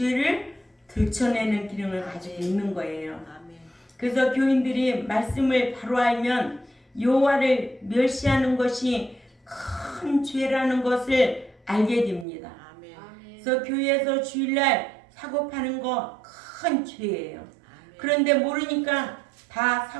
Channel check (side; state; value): left; drops out; at 12.2 s